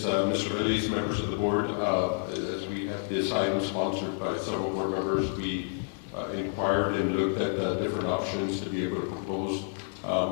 Mr. Veliz, members of the board, as we had this item sponsored by several board members, we inquired and looked at different options to be able to propose.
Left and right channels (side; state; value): right; silent; digital silence